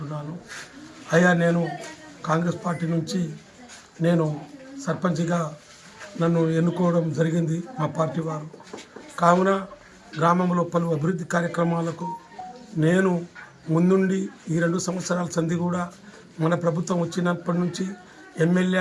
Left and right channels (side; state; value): both; identical; correlation 1.00